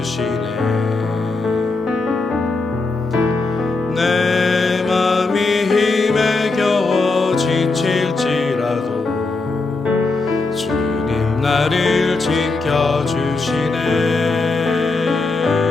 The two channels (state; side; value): quieter; right; 3.6 dB